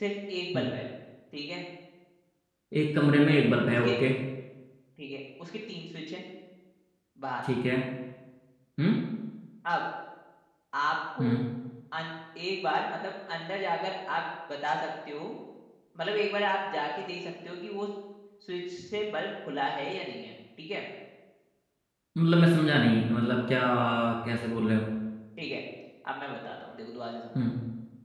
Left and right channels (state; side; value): identical; both; correlation 1.00